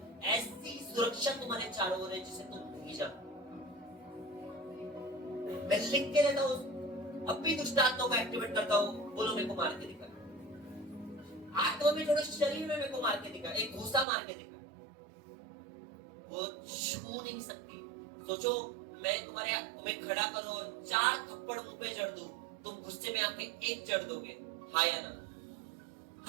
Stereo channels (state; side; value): drops out; left; at 14.1 s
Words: ऐसी सुरक्षा तुम्हारे चारों ओर है जिसे तुम नहीं जानते। मैं लिख के रहता हूं, अब भी दुष्ट आत्माओं को एक्टिवेट करता हूं, बोलो मेरे को मार के दिखा। आत्मा में थोड़ा शरीर में मेरे को मार के दिखा, एक घूसा मार के दिखा, वो छू नहीं सकती। सोचो मैं तुम्हें खड़ा करूं और 4 थप्पड़ मुंह पे जड़ दूं, तुम गुस्से में आके 1 जड़ दोगे, हाँ या ना?